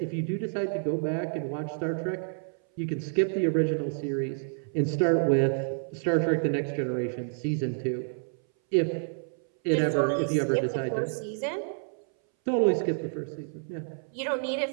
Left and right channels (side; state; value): left; silent; 59 dB below the other